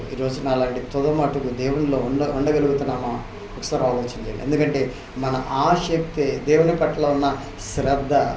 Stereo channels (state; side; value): identical; both; correlation 1.00